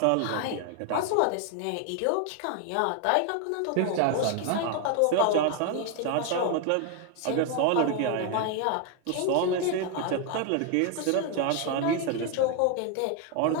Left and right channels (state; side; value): different; both; correlation 0.00